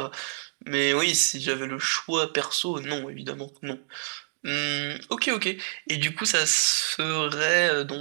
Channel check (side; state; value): left; silent; digital silence